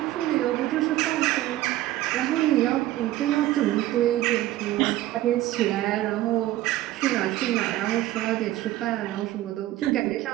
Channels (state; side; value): quieter; left; 15.3 dB